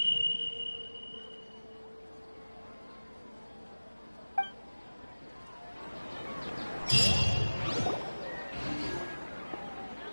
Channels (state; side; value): inverted; both; correlation -1.00